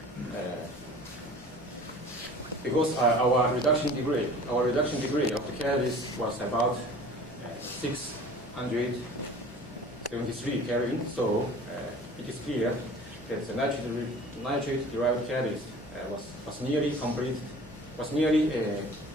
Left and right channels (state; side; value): noise; right; hum, 24 dB below the sound